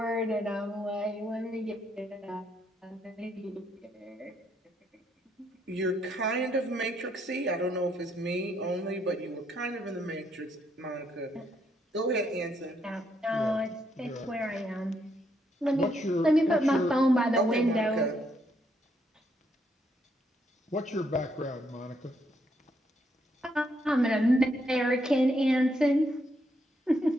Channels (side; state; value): both; normal; correlation 0.75